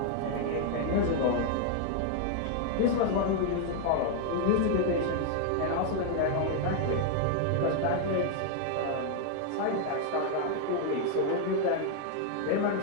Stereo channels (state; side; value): different; both; correlation 0.00